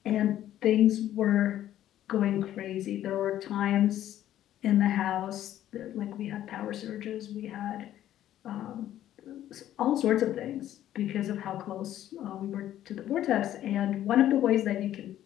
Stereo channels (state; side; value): quieter; right; 12.3 dB